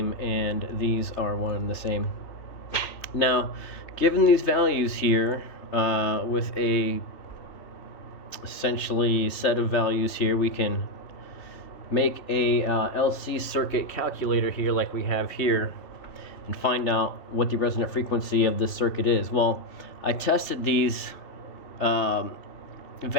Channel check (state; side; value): late; right; 3.0 ms